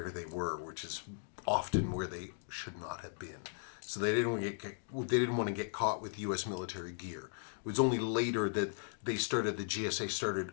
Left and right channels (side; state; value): right; silent; digital silence